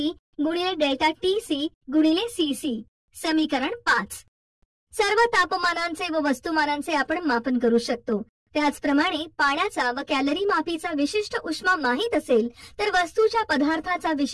गुणिले डेल्टा TC गुणिले CC. समीकरण 5. सर्व तापमानांचे व वस्तुमानांचे आपण मापन करू शकतो. त्याचप्रमाणे पाण्याचा व कॅलरी मापीचा विशिष्ट उष्मा माहित असेल तर वस्तूच्या पदार्थाचा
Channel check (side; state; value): both; identical; correlation 1.00